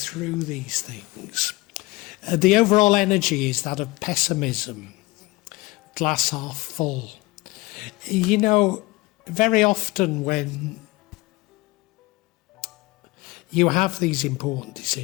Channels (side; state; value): right; quieter; 21.4 dB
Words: these things. The overall energy is that of pessimism, glass half full. You know, very often when you have these important